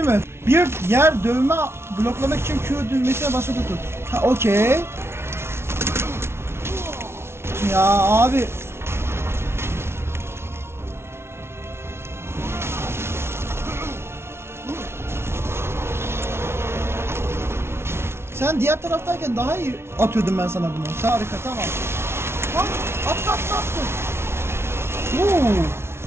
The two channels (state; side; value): late; left; 0.12 ms